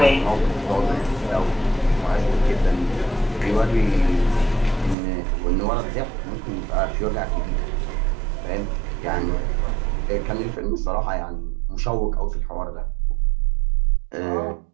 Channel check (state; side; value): drops out; left; at 5.0 s